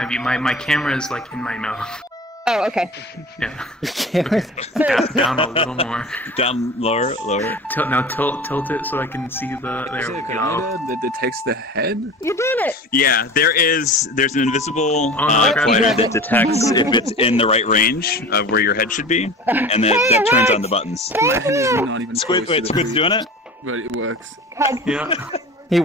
view. My camera is like in my mouth. Oh, okay. Yeah. Camera. Down a little more. Down lower. Tilt it so I can see the. Is There it we a go. grenade that detects the head? You did it. Yeah, there's an invisible Oh, no, I grabbed collider it. that detects if it's in the right range of where your head should be, and that turns on the buttons. My head is not even Squid, close to wait, the Squid's food, doing it? but it works. Yeah. He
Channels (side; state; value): both; normal; correlation 0.36